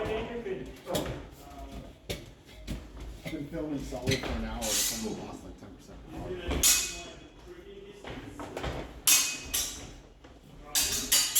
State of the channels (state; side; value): identical; both; correlation 1.00